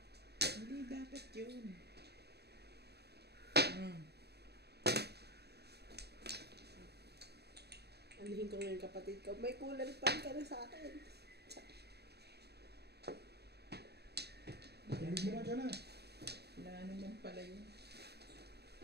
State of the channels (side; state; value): left; late; 0.48 ms